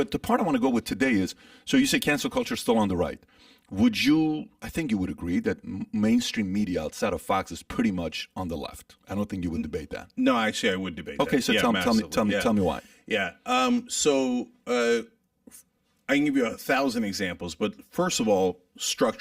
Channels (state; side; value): identical; both; correlation 1.00